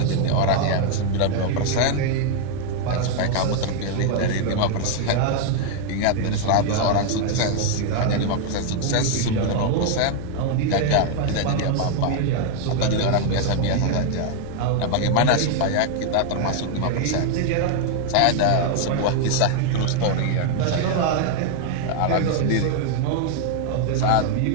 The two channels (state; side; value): different; both; correlation 0.00